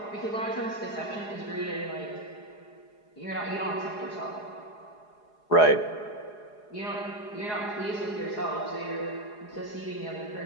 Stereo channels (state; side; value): late; right; 4.8 ms